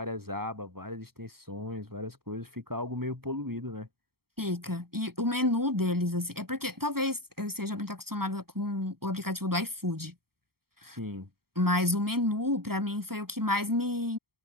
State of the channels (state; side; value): late; left; 0.94 ms